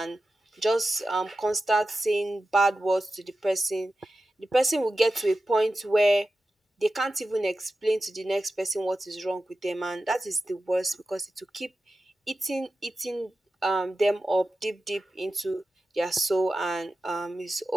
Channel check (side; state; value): both; normal; correlation 0.93